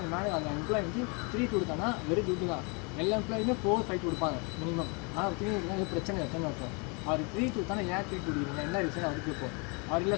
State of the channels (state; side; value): quieter; right; 32.6 dB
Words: எம்ப்ளாய் வந்து 3 கொடுத்தானா வெரி குட் தான். எல்லா எம்ப்ளாயுமே 4, 5 கொடுப்பாங்க மினிமம். ஆனால் 3 கொடுத்தா பிரச்சனை எத்தனை இருக்கும். அவர் 3 கொடுத்தானா ஏன் 3 கொடுக்குறீங்க, என்ன ரீசன் அவருக்கு கேட்போம். அவர் இல்லை